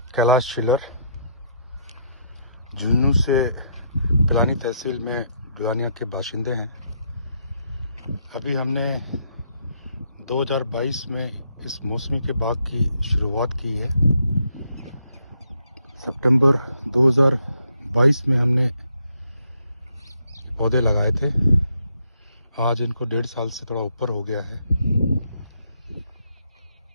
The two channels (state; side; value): inverted; both; correlation -0.74